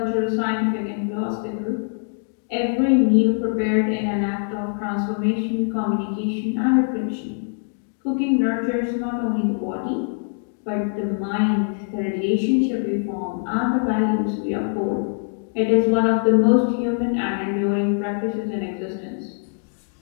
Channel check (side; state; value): right; silent; 63 dB below the other